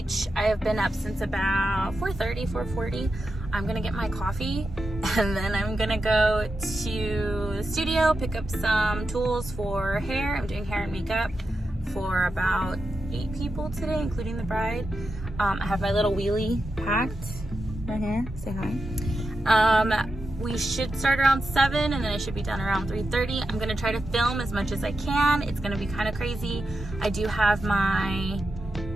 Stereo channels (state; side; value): normal; both; correlation 0.88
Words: I have been up since about 4:40. I'm gonna get my coffee and then I'm gonna go to the studio, pick up some tools for hair. I'm doing hair and makeup for about 8 people today, including the bride. I have my little wheelie packed right here. Say hi. We should start around 7 and then I should be done around 3:30. I'm gonna try to film as much as I can. It's gonna be kind of crazy. I do have my